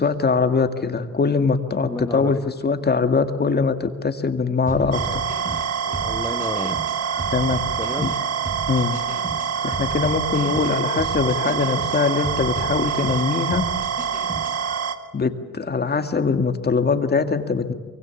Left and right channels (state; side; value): normal; both; correlation 0.22